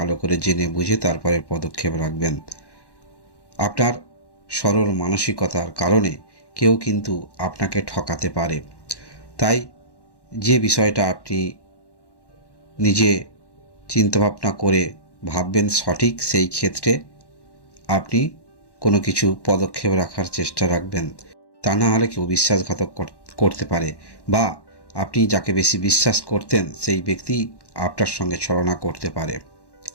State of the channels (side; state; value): right; late; 1.1 ms